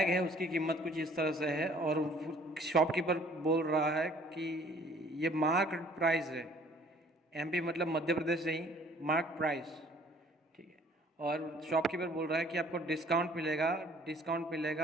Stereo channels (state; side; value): normal; both; correlation 0.56